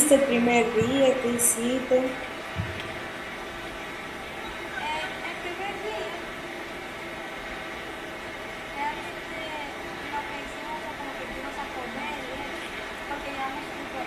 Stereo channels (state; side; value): identical; both; correlation 1.00